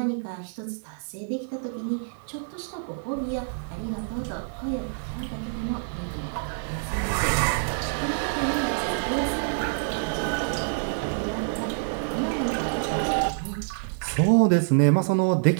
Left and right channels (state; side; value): silent; left; digital silence